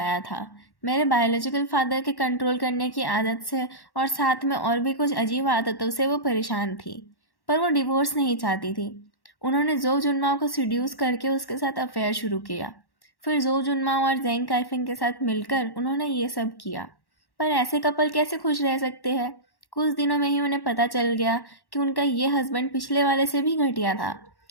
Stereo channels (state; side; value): late; right; 1.1 ms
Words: था। मेरे बायोलॉजिकल फादर के कंट्रोल करने की आदत से और साथ में और भी कुछ अजीब आदतों से वो परेशान थी। पर वो डिवोर्स नहीं चाहती थी। उन्होंने जो जुनमाओ को सीड्यूस करके उसके साथ अफेयर शुरू किया। फिर जो जुनमाओ और जेंग काइफिंग के साथ मिलकर उन्होंने ये सब किया। पर ऐसे कपल कैसे खुश रह सकते हैं? कुछ दिनों में ही उन्हें पता चल गया कि उनका ये हस्बैंड पिछले वाले से भी घटिया था।